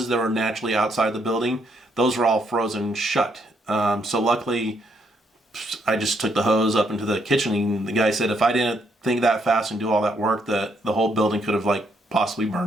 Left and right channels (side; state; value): both; normal; correlation 0.73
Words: that were naturally outside the building, those were all frozen shut. So luckily, I just took the hose up into the kitchen, and the guy said if I didn't think that fast and do all that work, that the whole building could have possibly